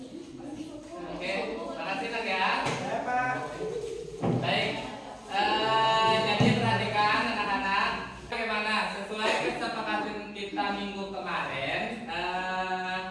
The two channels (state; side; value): identical; both; correlation 1.00